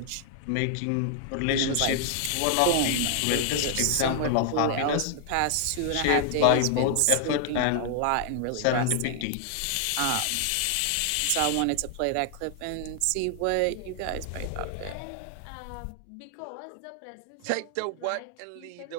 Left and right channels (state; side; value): different; both; correlation 0.00